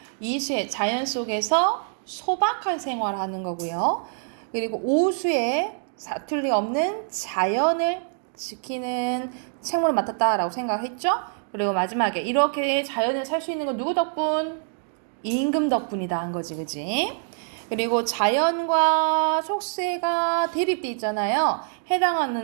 이수에 자연 속에서 소박한 생활하는 거고요. 그리고 오수에 사투리 없는 자연을 지키는 책무를 맡았다라고 생각했죠. 그리고 마지막에 이렇게 자연을 살 수 있는 건 누구 덕분? 임금 덕분이다 한 거지, 그지? 그리고 자연과 속세가 대립돼 있잖아요.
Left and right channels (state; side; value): silent; left; digital silence